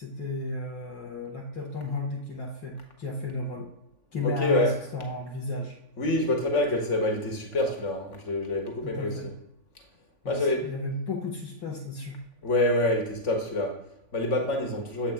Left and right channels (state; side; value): late; right; 3.5 ms